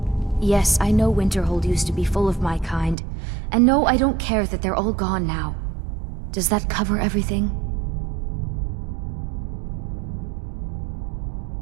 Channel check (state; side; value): drops out; left; at 3.0 s